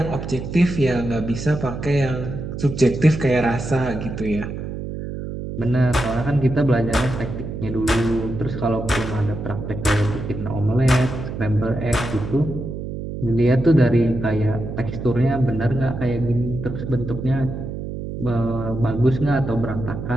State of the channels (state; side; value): noise; right; hum, 7 dB below the sound